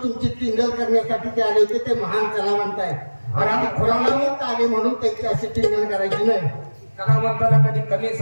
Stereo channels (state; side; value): inverted; both; correlation -1.00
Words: तुमची टिंगल करण्यासाठी ते आले होते. ते महान कलावंत आहे आणि आम्ही कलावंत आले म्हणून त्यांची अशी टिंगल करायची नाही. कलावंताला कधी कमी